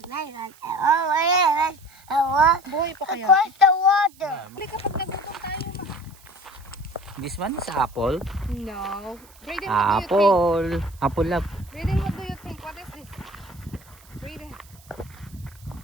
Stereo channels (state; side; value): noise; right; hiss, 26 dB below the sound